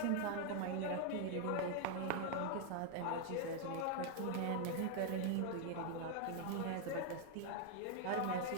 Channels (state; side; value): different; both; correlation 0.00